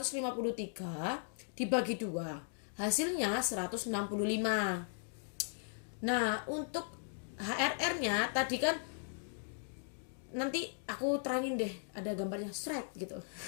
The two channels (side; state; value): right; silent; digital silence